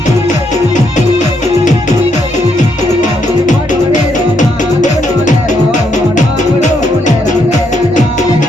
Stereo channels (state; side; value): normal; both; correlation 0.75